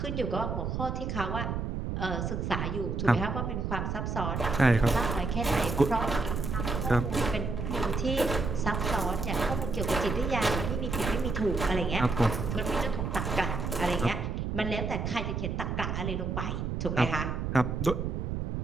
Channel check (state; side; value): noise; right; rumble, 2 dB below the sound